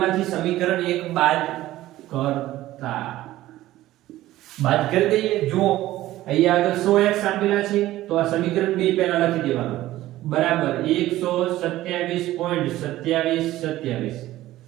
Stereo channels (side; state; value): left; quieter; 15.4 dB